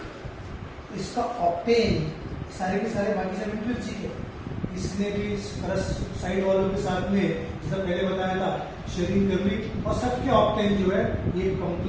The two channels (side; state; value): both; identical; correlation 1.00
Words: इसका ऑक्टेन सारे के सारे बाकी सब इंट्रिंसिक है। इसने भी साइड वालों के साथ में जैसा पहले बताया था शेयरिंग कर ली और सबके ऑक्टेन जो है ये